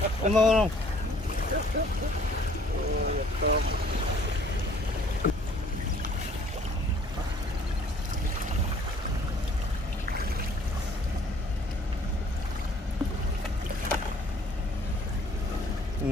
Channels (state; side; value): normal; both; correlation 0.57